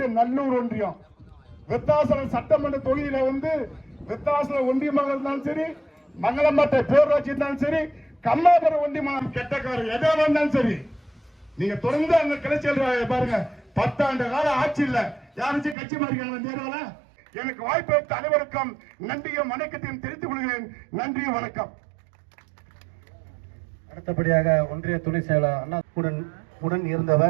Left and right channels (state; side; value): drops out; left; at 15.8 s